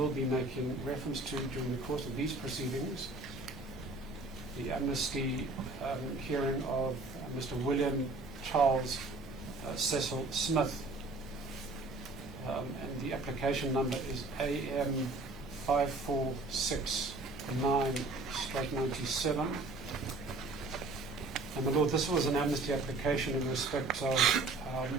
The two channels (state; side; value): quieter; left; 3.2 dB